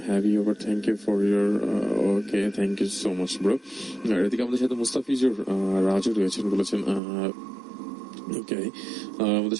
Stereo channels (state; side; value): drops out; left; at 7.0 s